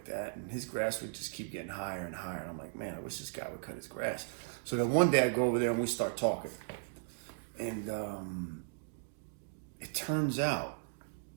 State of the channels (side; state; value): left; silent; digital silence